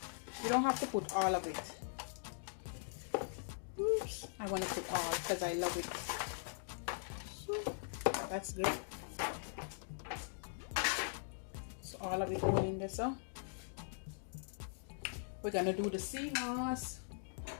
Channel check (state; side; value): silent; right; digital silence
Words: You don't have to put all of it. Oops, I want to put all because I love it. So that's good. So all of it going in there. So we're gonna do the sea moss.